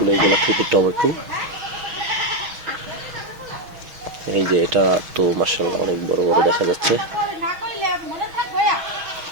গোলাকৃতির টমেটো। এই যে এটা তো মাশাআল্লাহ অনেক বড় বড় দেখা যাচ্ছে।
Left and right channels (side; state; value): left; late; 6.2 ms